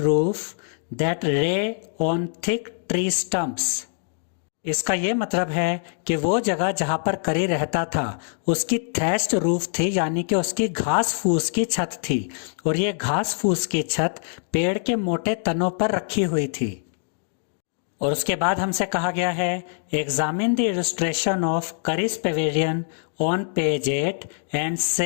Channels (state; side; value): silent; right; 63 dB below the other